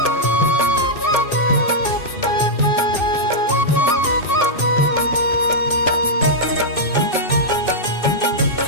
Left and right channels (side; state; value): right; late; 2.6 ms